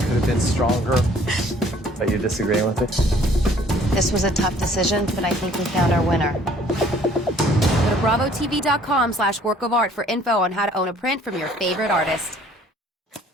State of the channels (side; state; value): both; normal; correlation 0.57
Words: have been stronger. Are you disagreeing with it? This was a tough decision, but I think we found our winner. Go to bravotv.com/workofart for info on how to own a print from your favorite artist.